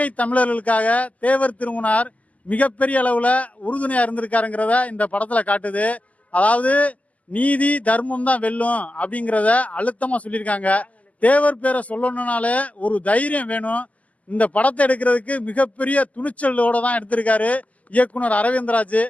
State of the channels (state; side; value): late; right; 0.072 ms